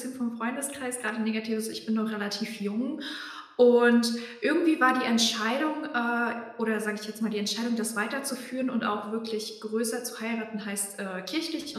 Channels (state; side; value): identical; both; correlation 1.00